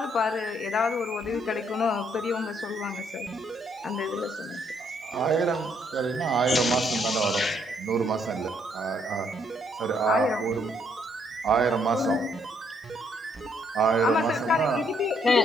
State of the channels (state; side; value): normal; both; correlation 0.70